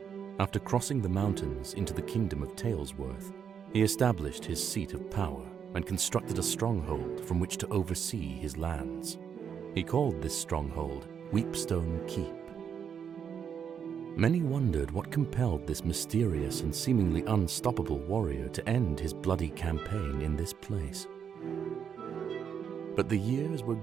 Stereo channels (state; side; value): quieter; left; 7.6 dB